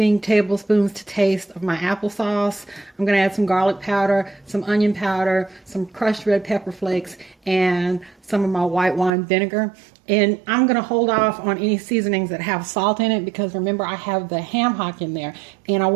tablespoons to taste of my applesauce. I'm going to add some garlic powder, some onion powder, some crushed red pepper flakes, and some of my white wine vinegar. And I'm going to hold off on any seasonings that have salt in it because remember I have the ham hock in there. And I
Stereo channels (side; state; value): left; drops out; at 9.1 s